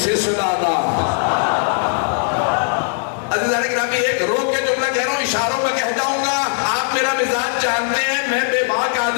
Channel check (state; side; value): silent; right; digital silence